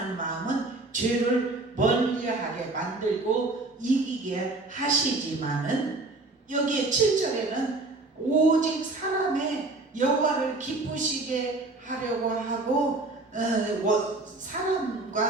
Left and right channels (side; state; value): left; quieter; 3.1 dB